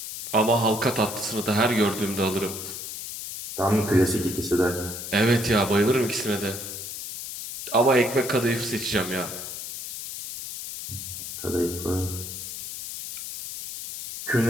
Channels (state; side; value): noise; left; hiss, 8 dB below the sound